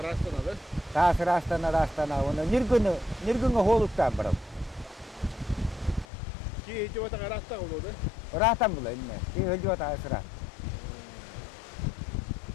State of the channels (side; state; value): right; drops out; at 6.1 s